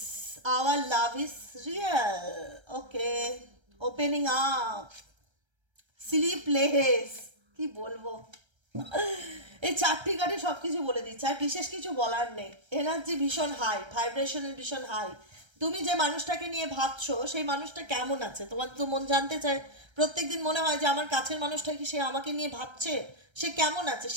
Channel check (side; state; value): left; late; 1.3 ms